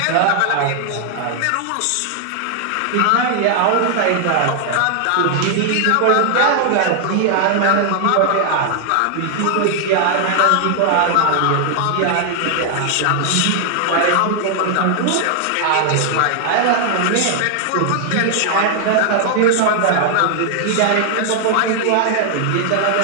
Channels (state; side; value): different; both; correlation 0.00